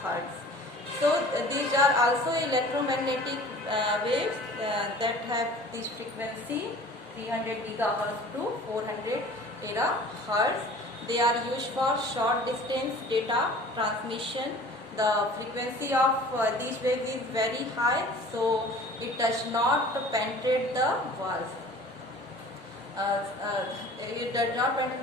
So these are also electromagnetic waves that have this frequency 300 GHz to 400 terahertz. They are used for short distance data transmission the frequency of these waves is very high, so it does not penetrate the walls. It does not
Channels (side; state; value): both; normal; correlation 0.45